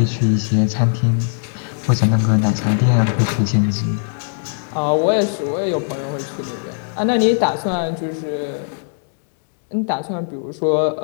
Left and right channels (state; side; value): silent; right; 66 dB below the other